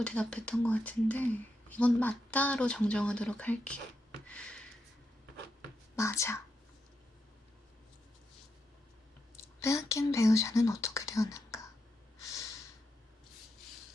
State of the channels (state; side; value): normal; both; correlation 0.84